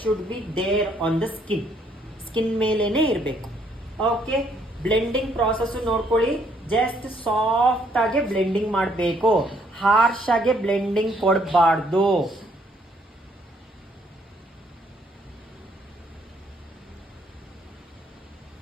should be there on the skin ಮೇಲೇನೆ ಇರಬೇಕು. ಓಕೆ, ಬ್ಲೆಂಡಿಂಗ್ ಪ್ರಾಸೆಸ್ ನೋಡ್ಕೊಳ್ಳಿ. ಜಸ್ಟ್ ಸಾಫ್ಟ್ ಆಗಿ ಬ್ಲೆಂಡಿಂಗ್ ಮಾಡಬೇಕು, ಹಾರ್ಶ್ ಆಗಿ ಬ್ಲೆಂಡಿಂಗ್ ಕೊಡಬಾರ್ದು.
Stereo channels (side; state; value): both; normal; correlation 0.68